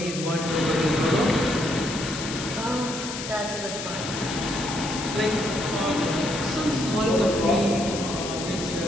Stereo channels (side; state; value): left; noise; hiss, 7 dB below the sound